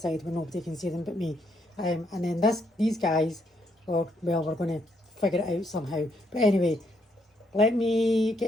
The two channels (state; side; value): normal; both; correlation 0.74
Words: where nobody can see them but me. And then these guys, well, we're going to figure it out somehow. But anyway, let me